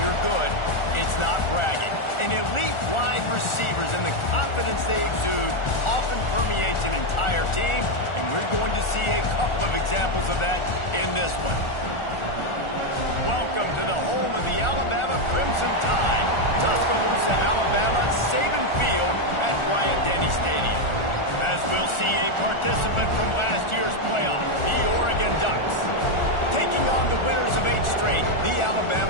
you're good, it's not bragging. And elite wide receivers and the confidence they exude often permeates an entire team, and we're going to see a couple of examples of that in this one. Welcome to the home of the Alabama Crimson Tide, Tuscaloosa, Alabama, Saban Field at Bryant-Denny Stadium. As we'll see a participant from last year's playoff, the Oregon Ducks, taking on the winners of 8 straight, the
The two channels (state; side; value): late; right; 1.4 ms